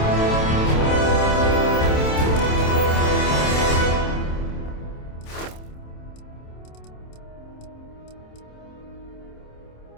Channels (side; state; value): right; late; 27 ms